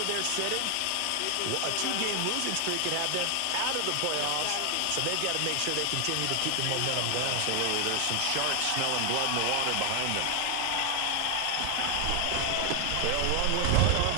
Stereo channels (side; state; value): both; different; correlation 0.00